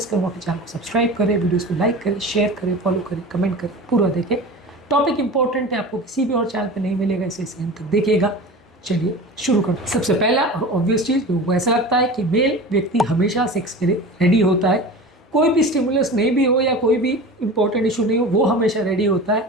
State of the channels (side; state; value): both; normal; correlation 0.34